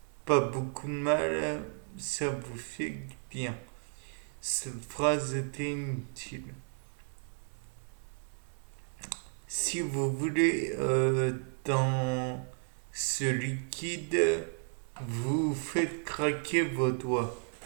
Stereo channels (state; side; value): silent; left; 56 dB below the other